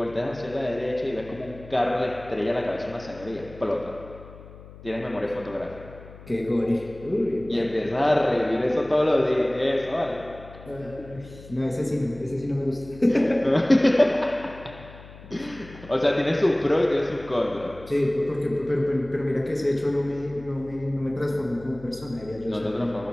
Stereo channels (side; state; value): left; noise; hum, 18 dB below the sound